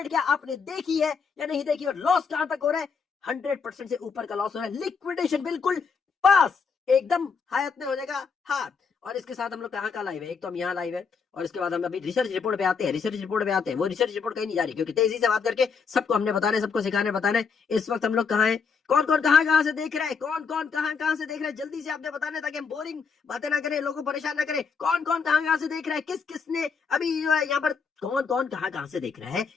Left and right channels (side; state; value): right; quieter; 5.7 dB